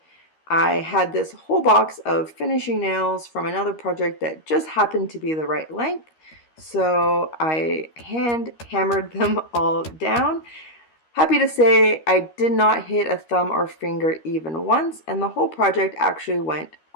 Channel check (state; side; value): late; right; 13 ms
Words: I had this whole box of finishing nails from another project that just happened to be the right length. So I hand hammered them all down. Happy to say I did not hit a thumb or finger even once, and the whole project actually went